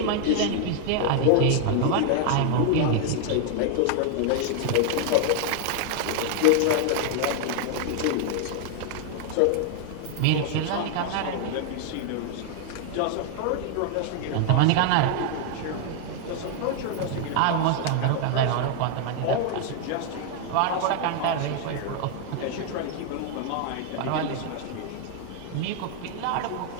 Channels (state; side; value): different; both; correlation 0.00